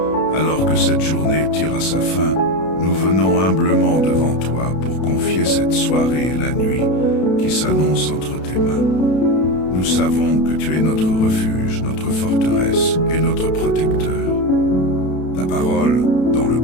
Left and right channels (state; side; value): late; right; 32 ms